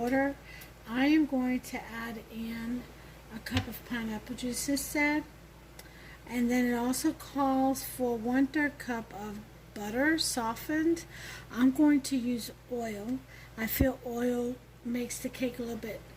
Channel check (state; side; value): identical; both; correlation 1.00